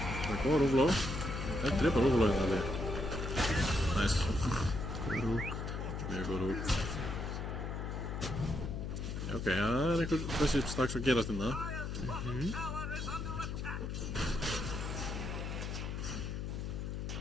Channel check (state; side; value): noise; left; hum, 4 dB below the sound